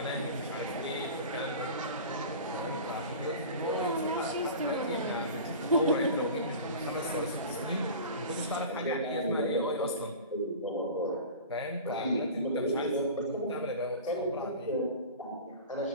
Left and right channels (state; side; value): inverted; both; correlation -0.35